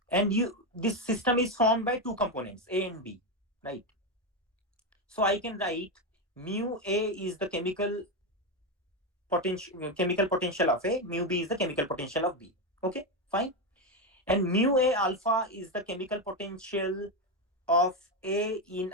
And this system is formed by two components, A and B, right? So I can write mu A is the chemical potential of A, mu B is the chemical potential of B. Okay, fine. And mu A alpha is the chemical potential of A in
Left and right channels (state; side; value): normal; both; correlation 0.10